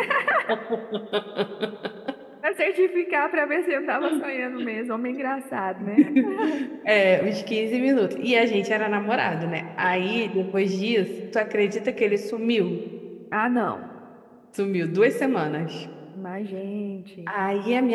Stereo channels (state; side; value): identical; both; correlation 1.00